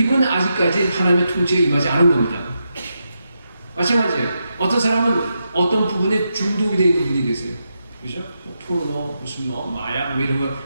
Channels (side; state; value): both; inverted; correlation -0.85